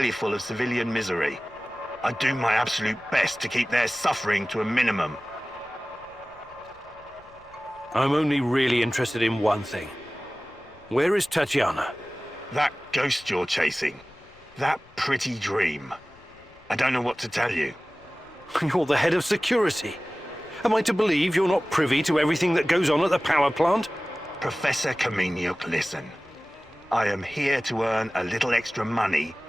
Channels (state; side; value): noise; left; rumble, 27 dB below the sound